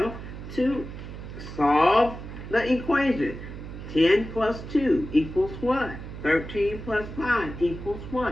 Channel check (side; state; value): right; noise; hum, 11 dB below the sound